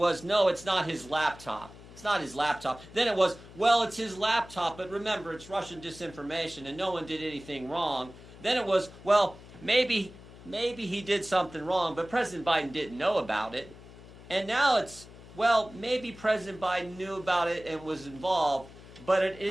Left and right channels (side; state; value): left; noise; hum, 18 dB below the sound